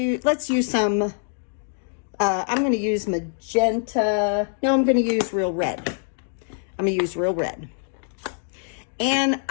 let's use some, I'm going to use magenta, no, I'm going to use real red. I'm going to use real red. And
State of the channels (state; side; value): silent; right; digital silence